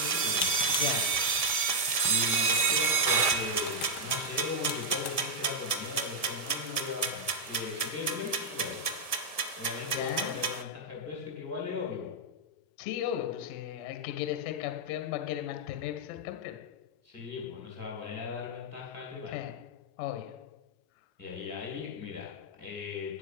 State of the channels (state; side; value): late; right; 1.7 ms